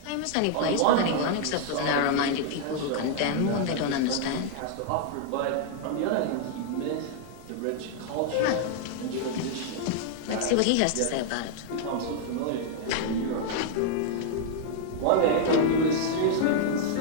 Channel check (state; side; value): different; both; correlation 0.00